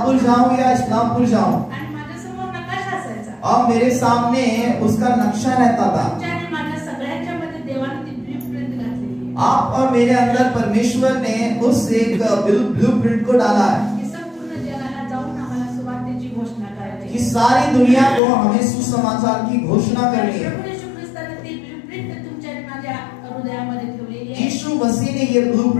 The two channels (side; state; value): right; drops out; at 18.2 s